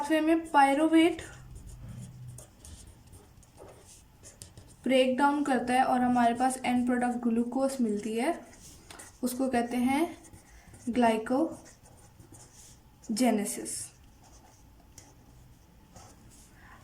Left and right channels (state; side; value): identical; both; correlation 1.00